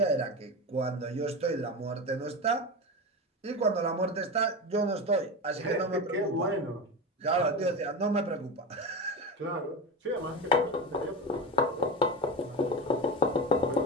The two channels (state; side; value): normal; both; correlation 0.23